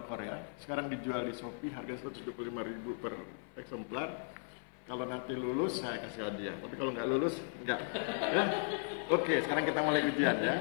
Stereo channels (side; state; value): right; silent; 53 dB below the other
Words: sekarang dijual di Shopee harga 125.000 per eksemplar. Kalau nanti lulus saya kasih hadiah, tapi kalau nggak lulus nggak. Ya? Oke, sekarang kita mulai ujian ya.